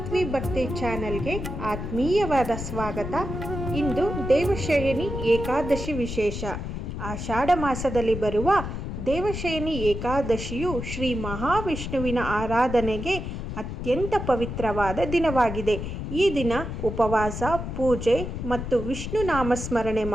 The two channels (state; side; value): noise; left; rumble, 6 dB below the sound